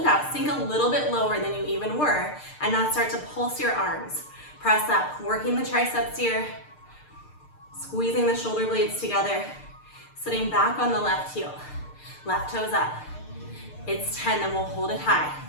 out. Sink a little bit lower than you even were, and now start to pulse your arms. Press up, working the triceps here, squeezing the shoulder blades together, sitting back on the left heel. Left toes up. It's 10, then we'll hold it high.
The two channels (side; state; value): right; late; 6.6 ms